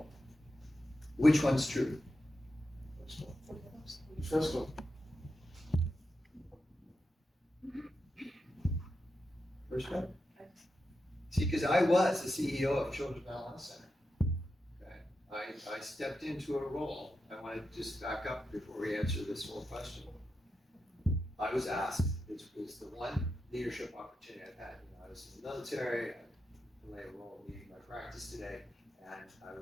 Which one's true? First one. First one? See, because I was the CEO of Children's Mental Health Center. Okay? I stepped into a role. I want to just back up before we answer this whole question. I was asked, it was the one leadership opportunity I've had. You know, I was in the military, I played a role leading my practice today, and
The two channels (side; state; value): both; normal; correlation 0.88